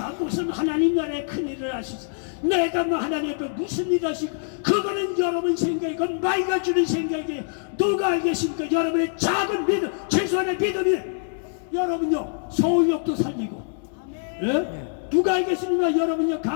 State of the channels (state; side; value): silent; right; digital silence